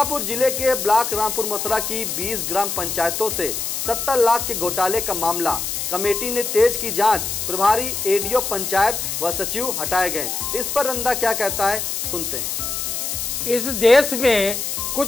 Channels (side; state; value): left; noise; hiss, 3 dB below the sound